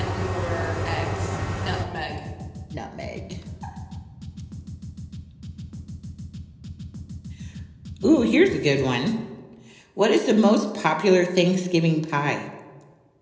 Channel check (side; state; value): both; identical; correlation 1.00